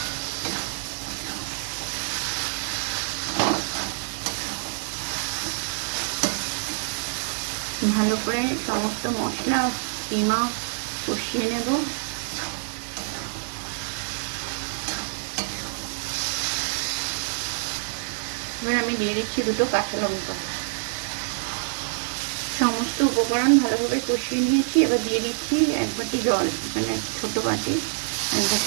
ভালো করে সমস্ত মশলা কিমা কষিয়ে নেব। এবার আমি দিয়ে দিচ্ছি দুটো কাঁচা লঙ্কা। সমস্ত উপকরণ ভালোভাবে কষিয়ে নিয়েছি। এবার দিয়ে দিচ্ছি এক বাটি জল, এখানে ছোট বাটি এক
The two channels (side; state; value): left; silent; digital silence